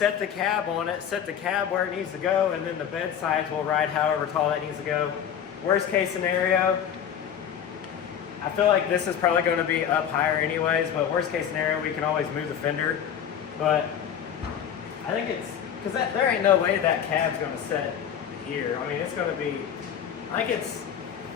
the cab on it, set the cab where it needs to go, and then the bed sides will ride however tall that needs to go. Worst case scenario, I feel like this is probably going to be up higher anyways, but worst case scenario, we can always move the fender. But I think it's, because there ain't no way that cab's going to set here. I mean, it's going to be, I think it's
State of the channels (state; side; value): quieter; right; 8.8 dB